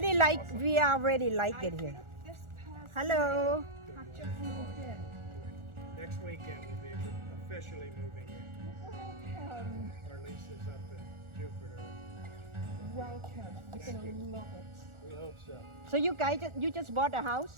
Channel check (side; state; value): left; late; 1.4 ms